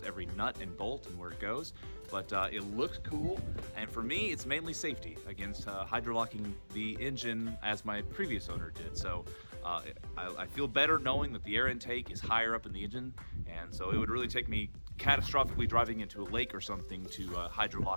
every nut and bolt and where it goes. But it looks cool, and for me, it's mainly safety against hydrolocking the engine as my previous owner did. So I feel better knowing that the air intake is higher up in the engine, and so it would really take me catastrophically driving into a lake or something to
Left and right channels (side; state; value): both; inverted; correlation -1.00